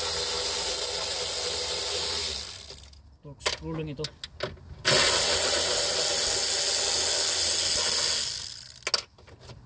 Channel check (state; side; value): identical; both; correlation 1.00